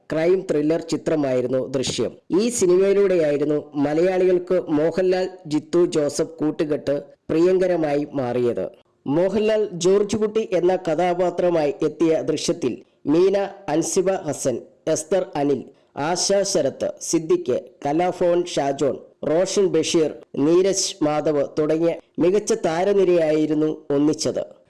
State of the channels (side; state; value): both; identical; correlation 1.00